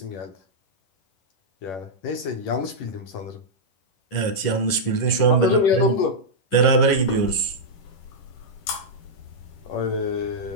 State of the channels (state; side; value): late; right; 11 ms